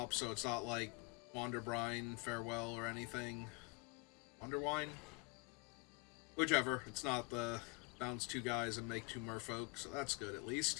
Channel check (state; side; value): quieter; right; 29.4 dB